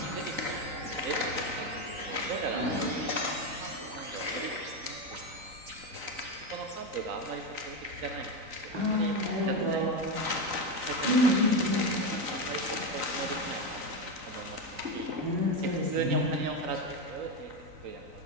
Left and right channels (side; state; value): left; late; 3.9 ms